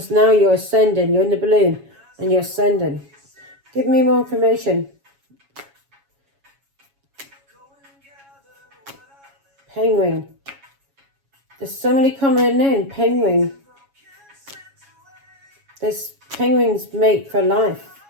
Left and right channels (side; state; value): left; late; 7.2 ms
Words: now you're ascending. You're in the balloon and you're ascending. Give me more information. Penguin. There's somebody coming in, penguin. This penguin's mate for life.